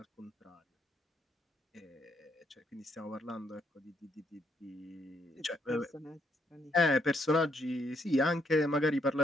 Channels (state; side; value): normal; both; correlation 0.74